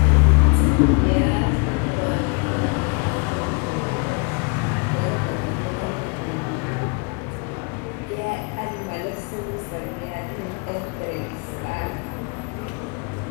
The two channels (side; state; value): right; quieter; 33.8 dB